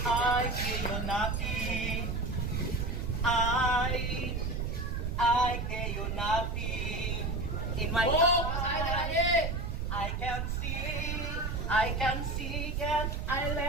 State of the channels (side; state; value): right; noise; rumble, 2 dB below the sound